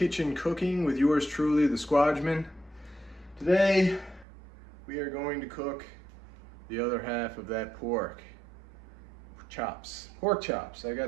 Cooking with yours truly, the Squadgeman. Today we are going to cook the other half of that pork chops. I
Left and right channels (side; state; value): left; drops out; at 4.2 s